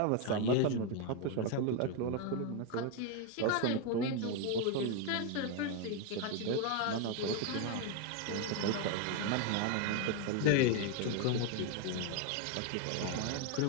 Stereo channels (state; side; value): different; both; correlation 0.01